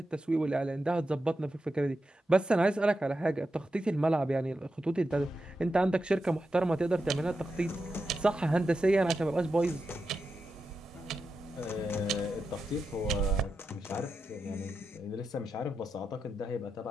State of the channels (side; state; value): both; normal; correlation 0.89